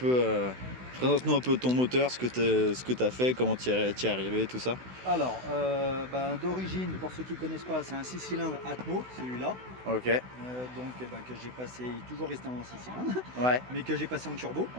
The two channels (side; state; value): left; late; 16 ms